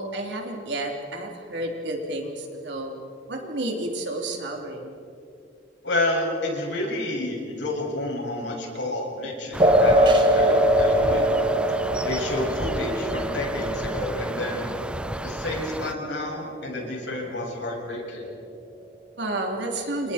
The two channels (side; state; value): both; normal; correlation 0.34